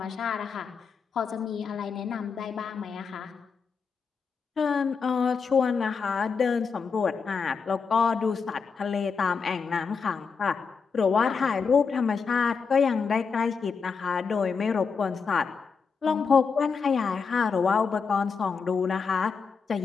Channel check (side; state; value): right; quieter; 5.5 dB